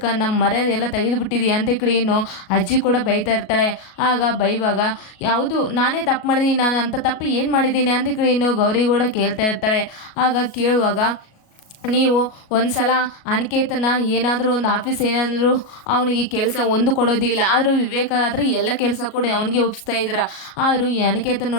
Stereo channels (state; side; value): late; right; 37 ms